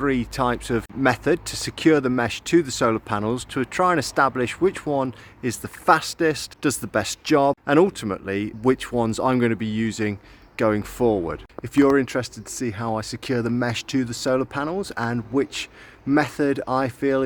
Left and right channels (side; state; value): both; identical; correlation 1.00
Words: types of method to secure the mesh to the solar panels, to try and establish which one is the fastest, does the best job, and ultimately which ones I'm going to be using going forward. If you're interested to see how I secure the mesh to the solar panels and which method I feel